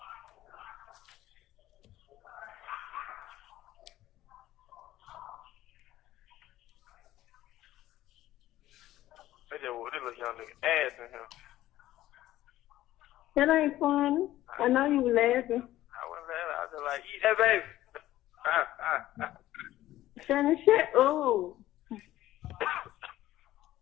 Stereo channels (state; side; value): quieter; right; 14.6 dB